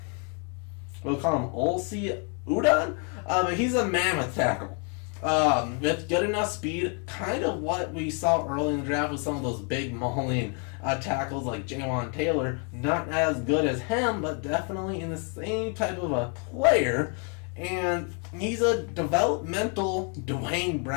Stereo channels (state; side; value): quieter; right; 38.9 dB